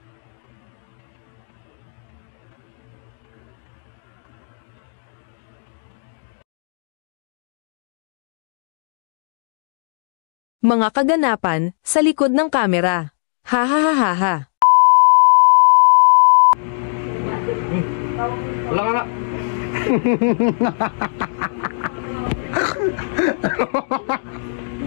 Mga kaganapan sa likod ng kamera. Ha ha ha ha ha. Wala ka nga.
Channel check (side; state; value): right; silent; digital silence